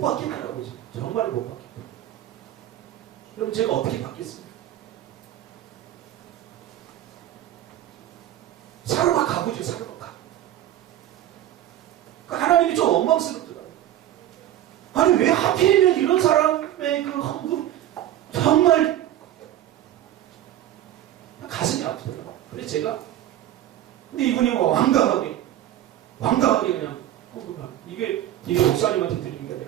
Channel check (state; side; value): quieter; left; 12.5 dB